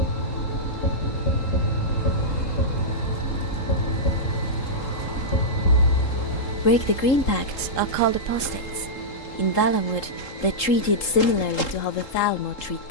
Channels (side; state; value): right; late; 3.8 ms